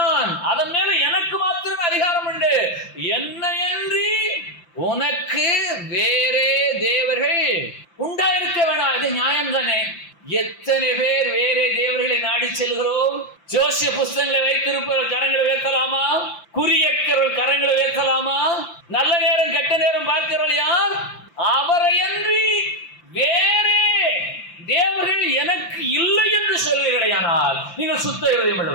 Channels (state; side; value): late; right; 5.8 ms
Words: அதன் மேல எனக்கு மாத்திரமே அதிகாரம் உண்டு. என்னை அன்றி உனக்கு வேறே தேவர்கள் உண்டாயிருக்க வேணாம். இது நியாயம் தானே? எத்தனை பேர் வேறே தேவர்களை நாடி நாடி செல்கிறோம்? ஜோசிய புஸ்தகங்களை வைத்திருப்பவர் கரங்களை உயர்த்தலாமா? குறியக்கிறவர்கள் கரங்களை உயர்த்தலாமா? நல்ல நேரம் கெட்ட நேரம் பார்க்கிறவர்கள் யார்? அவரையன்றி வேறே தேவர்கள் எனக்கு இல்லை என்று சொல்வீர்களேயானால் நீங்கள் சுத்த இருதயம்